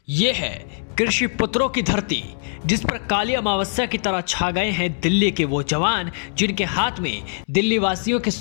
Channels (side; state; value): right; silent; digital silence